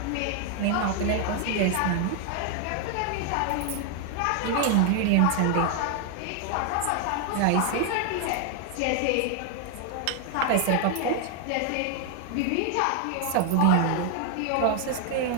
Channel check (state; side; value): different; both; correlation 0.00